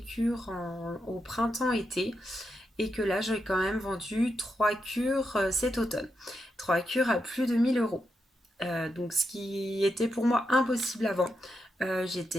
cures au printemps-été et que là, j'ai quand même vendu 3 cures cet automne. 3 cures à plus de 1 000 euros. Donc, ce qui était pour moi impossible avant.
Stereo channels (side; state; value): both; normal; correlation 0.85